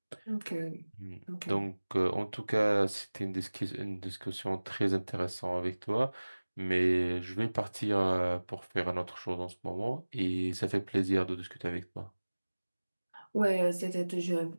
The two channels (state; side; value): inverted; both; correlation -1.00